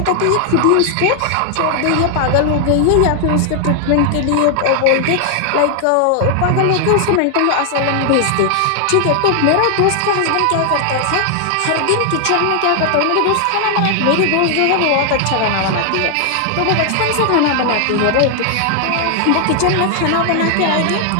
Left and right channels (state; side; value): different; both; correlation 0.00